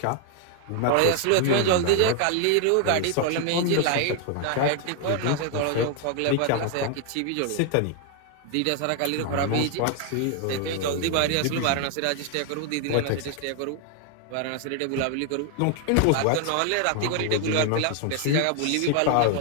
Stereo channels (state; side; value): different; both; correlation 0.00